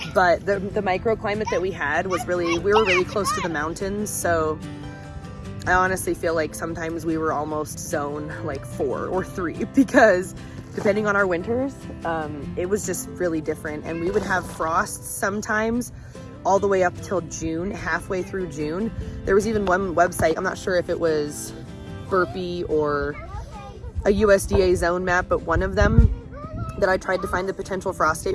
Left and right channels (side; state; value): both; identical; correlation 1.00